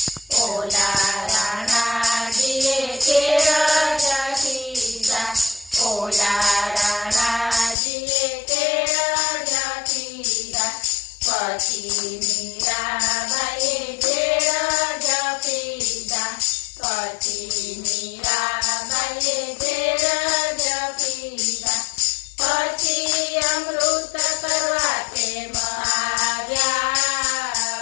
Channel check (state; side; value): drops out; right; at 7.8 s